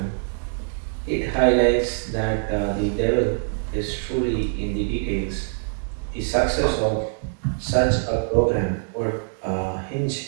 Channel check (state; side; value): silent; left; digital silence